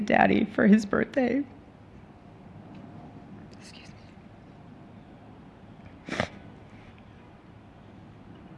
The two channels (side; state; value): both; identical; correlation 1.00